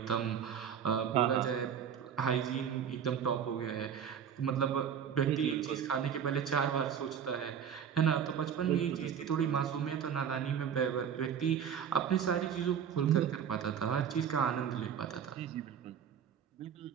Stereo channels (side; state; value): left; quieter; 8.1 dB